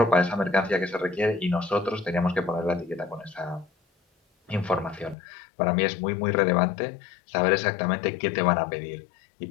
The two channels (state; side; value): drops out; right; at 5.2 s